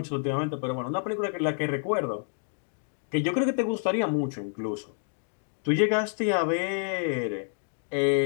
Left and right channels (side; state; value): right; silent; digital silence